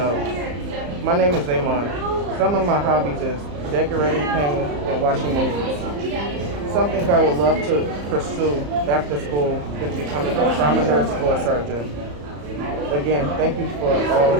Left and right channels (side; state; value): left; late; 34 ms